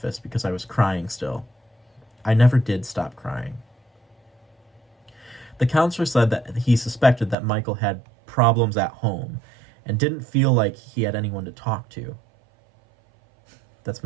because I was crying still. I never did stop crying. The counselor said that he suspected that Michael had problems at home and didn't feel like he had anyone to talk to. That's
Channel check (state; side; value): drops out; left; at 7.4 s